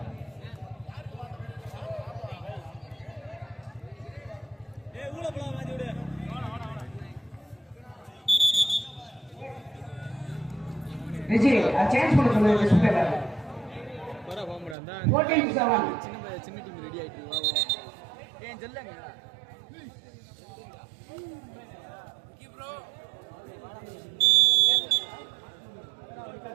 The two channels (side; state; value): left; drops out; at 14.8 s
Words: விஜி சேஞ்ச் பண்ண சொல்லுங்க டிஸ்பிளேல 14-7 சின்ன டீம் ரெடி ஆயிட்டு வா ஏன் சொல்லுங்க ப்ரோ